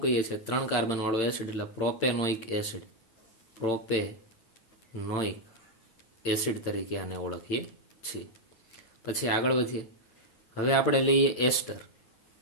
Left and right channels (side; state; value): right; late; 8.9 ms